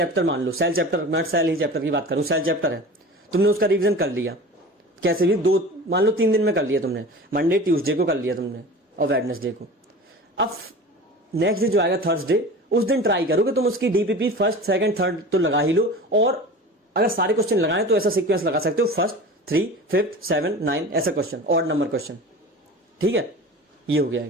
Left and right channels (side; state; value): both; normal; correlation 0.36